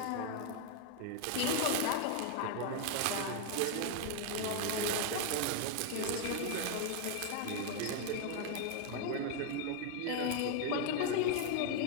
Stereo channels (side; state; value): both; different; correlation 0.00